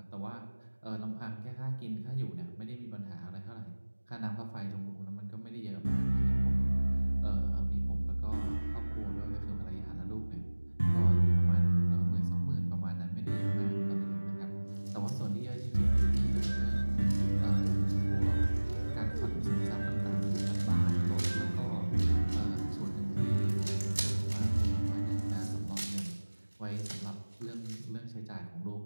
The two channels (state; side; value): inverted; both; correlation -1.00